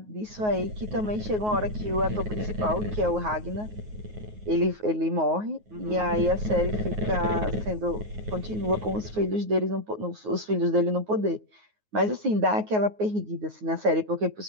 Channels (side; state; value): left; late; 9.5 ms